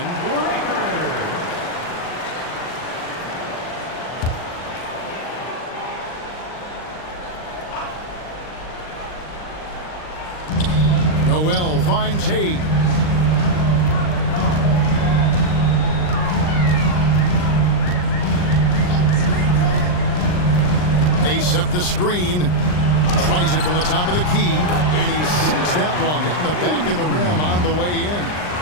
Noel finds Hayes. They set the screen. Tries it from the top of the key. And he sinks that one, hitting the back of the rim on the way in.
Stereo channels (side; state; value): right; late; 39 ms